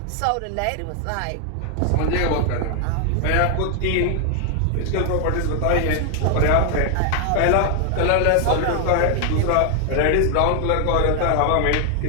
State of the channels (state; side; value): different; both; correlation 0.00